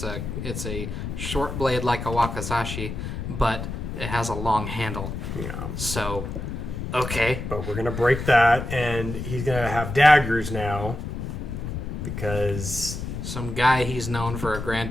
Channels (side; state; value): left; noise; rumble, 6 dB below the sound